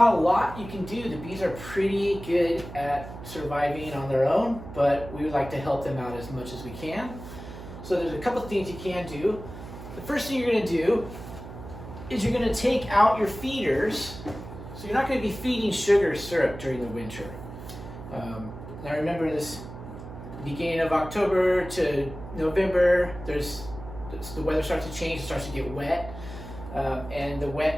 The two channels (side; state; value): right; noise; hum, 12 dB below the sound